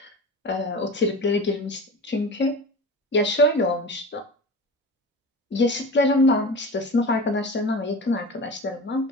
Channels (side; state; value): both; normal; correlation 0.32